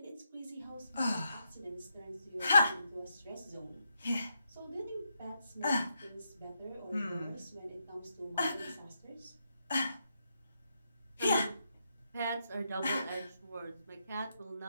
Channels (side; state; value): both; inverted; correlation -0.81